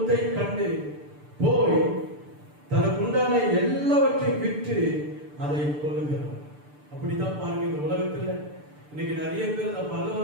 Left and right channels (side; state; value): left; late; 6.8 ms